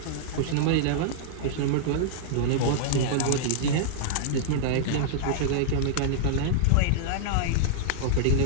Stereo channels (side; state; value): both; different; correlation -0.01